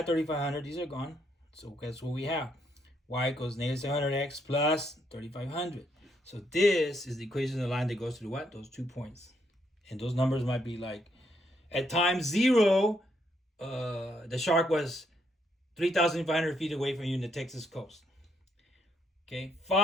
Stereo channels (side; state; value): both; normal; correlation 0.74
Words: 3,500. These are gone. So guess what we have? Y equals negative 700x plus 3,500. So this is the equation of the line that goes to what? Those 2 points. And those numbers might be like, at time 0, the shark was 3,500 feet away from you in the Texas coast. Okay,